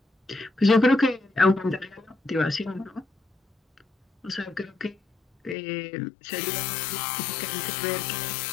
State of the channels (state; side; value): drops out; right; at 5.6 s